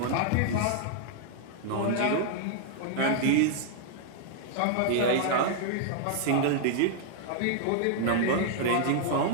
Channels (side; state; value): both; different; correlation -0.01